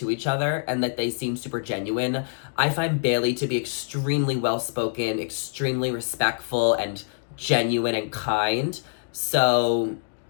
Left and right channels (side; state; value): right; silent; digital silence